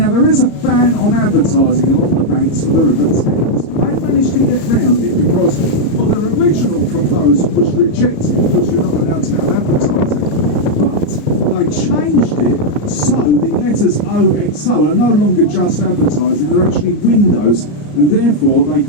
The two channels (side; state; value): right; late; 34 ms